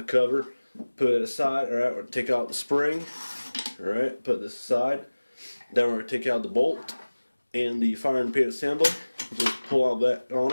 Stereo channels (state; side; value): inverted; both; correlation -1.00